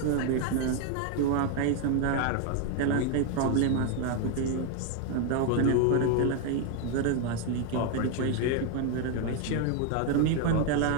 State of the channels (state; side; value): different; both; correlation 0.01